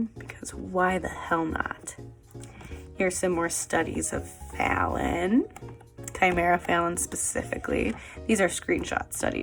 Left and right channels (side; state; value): both; identical; correlation 1.00